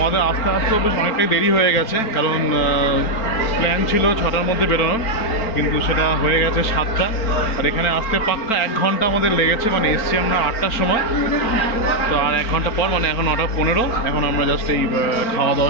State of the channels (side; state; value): right; late; 4.4 ms